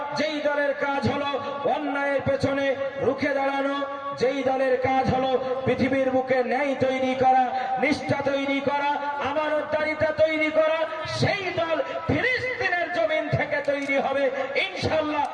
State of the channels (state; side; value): identical; both; correlation 1.00